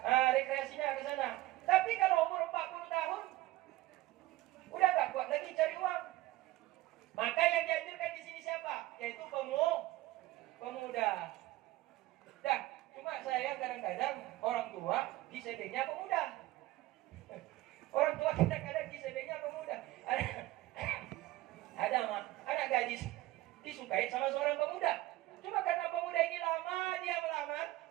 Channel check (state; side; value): quieter; left; 17.3 dB